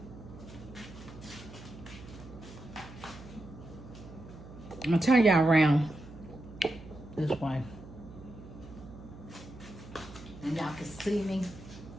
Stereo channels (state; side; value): noise; right; hum, 16 dB below the sound